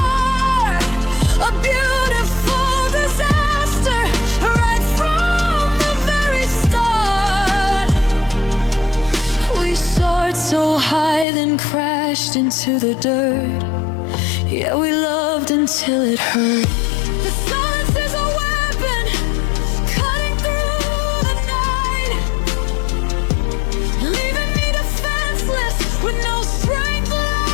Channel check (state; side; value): drops out; right; at 11.2 s